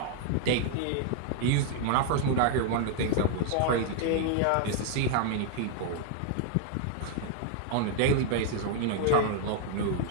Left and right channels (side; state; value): both; different; correlation 0.00